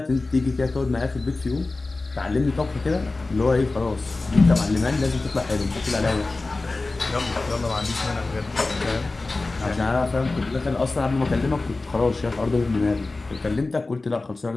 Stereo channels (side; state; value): right; quieter; 3.4 dB